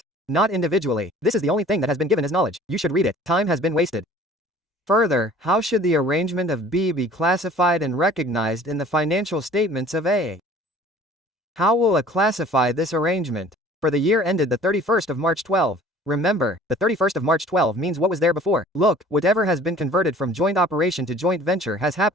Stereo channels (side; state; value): both; normal; correlation 0.50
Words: Not individually. This is the only thing that has been given as knowledge. You should read it. Time has been wasted. Further, how should the arrangement of B be classified and recognized in the financial statements of A? How will A classify this arrangement? For the year ended the 31st of March 12. Remember, the 31st of March 12 means what was there before. Look, whatever has been converted from joint operation to joint venture has